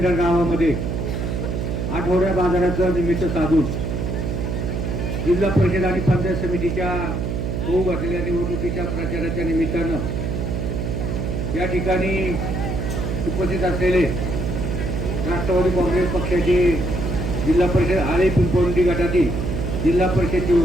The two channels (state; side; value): noise; right; hum, 2 dB below the sound